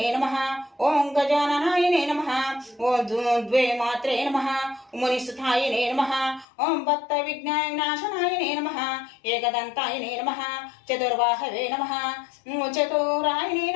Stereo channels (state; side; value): drops out; right; at 6.5 s